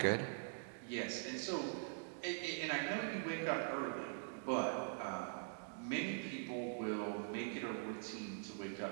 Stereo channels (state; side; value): silent; left; digital silence